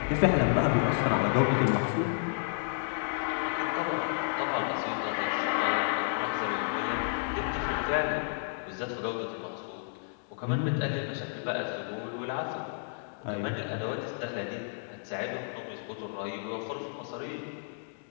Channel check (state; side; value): silent; right; digital silence